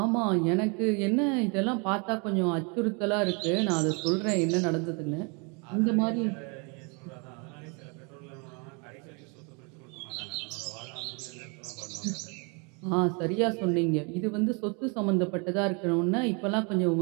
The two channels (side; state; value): left; quieter; 33.1 dB